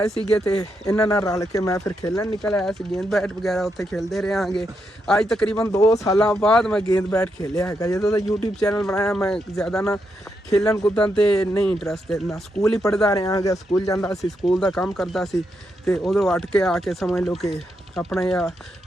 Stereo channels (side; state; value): both; normal; correlation 0.82